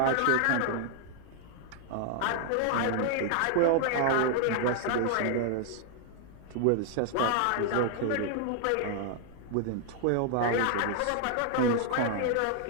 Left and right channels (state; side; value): different; both; correlation 0.00